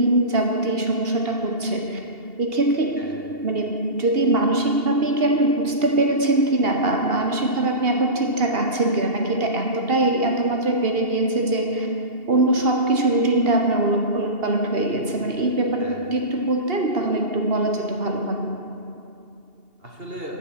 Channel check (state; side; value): late; left; 2.8 ms